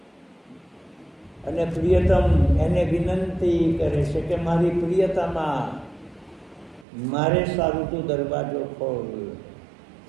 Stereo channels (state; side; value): drops out; left; at 6.9 s